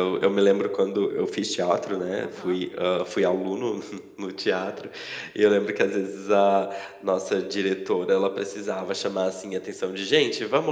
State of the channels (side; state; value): both; identical; correlation 1.00